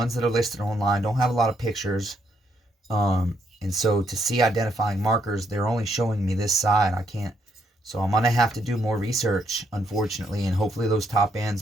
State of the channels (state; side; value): normal; both; correlation 0.74